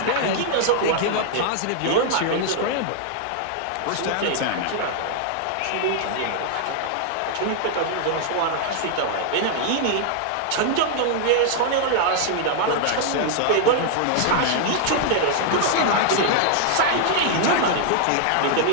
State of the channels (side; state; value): both; different; correlation 0.00